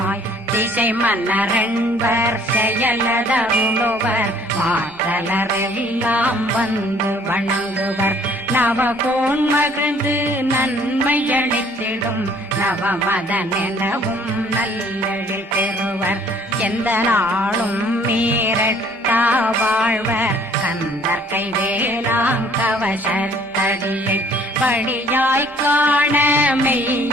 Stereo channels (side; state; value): both; normal; correlation 0.58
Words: திசை மன்னரென்பர் செயலதருளுவர் மாற்றலரெல்லாம் வந்து வணங்குவர் நவகோன் மகிழ்ந்து நன்மையளித்திடும் நவமதனெனவும் நல்லெழில் பெறுவர் எந்த நாளும் மீறட்டா வாழ்வர் கந்தர் கைவேலாங் கவசத்தடியை படியாய் காண